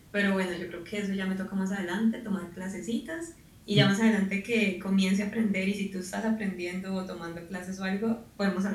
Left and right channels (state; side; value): identical; both; correlation 1.00